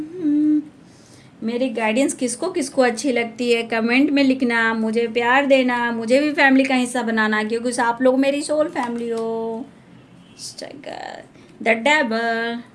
मेरी गाइडेंस किसको किसको अच्छी लगती है कमेंट में लिखना, मुझे प्यार देना, मुझे भी फैमिली का हिस्सा बनाना, क्योंकि आप लोग मेरी सोल फैमिली हो। The devil,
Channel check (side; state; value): both; identical; correlation 1.00